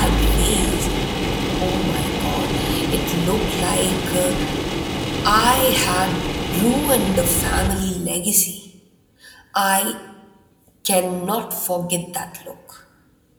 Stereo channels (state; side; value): identical; both; correlation 1.00